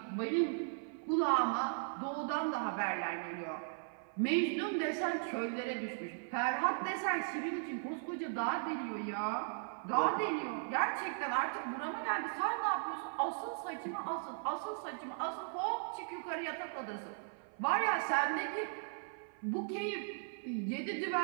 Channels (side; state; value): left; silent; 53 dB below the other